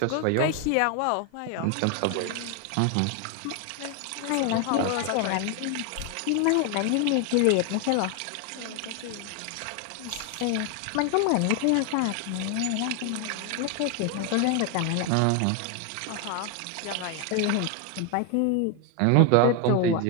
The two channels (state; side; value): different; both; correlation 0.01